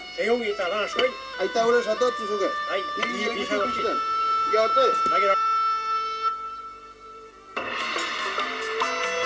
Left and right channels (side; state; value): both; identical; correlation 1.00